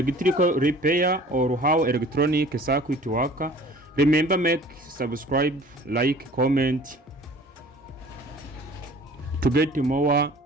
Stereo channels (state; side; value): normal; both; correlation 0.48